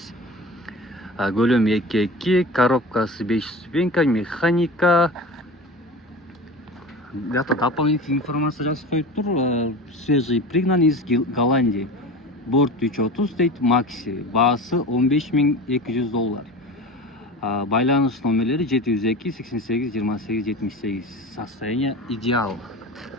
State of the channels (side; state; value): both; normal; correlation 0.33